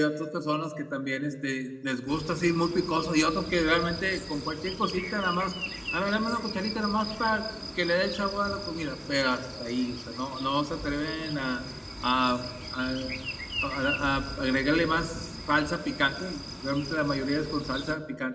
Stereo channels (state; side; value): identical; both; correlation 1.00